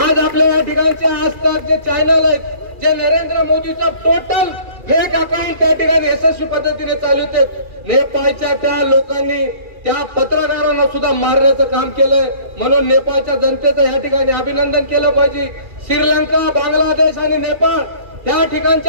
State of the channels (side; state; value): left; late; 2.4 ms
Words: आज आपल्या या ठिकाणचे आजतक जे चॅनल आहेत, जे नरेंद्र मोदीचं टोटल फेक अकाउंट त्या ठिकाणी यशस्वी पद्धतीने चालवते, नेपाळच्या त्या लोकांनी त्या पत्रकारांना सुद्धा मारण्याचं काम केलंय. म्हणून नेपाळच्या जनतेचं या ठिकाणी अभिनंदन केलं पाहिजे. श्रीलंका, बांगलादेश आणि नेपाळ त्या